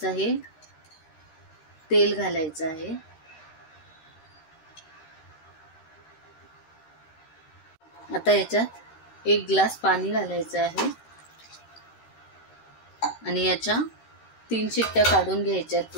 हे तेल घालायचं आहे. आता याच्यात एक ग्लास पाणी घालायचं आहे आणि याच्या 3 शिट्ट्या काढून घ्यायच्या आहेत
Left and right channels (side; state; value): right; late; 13 ms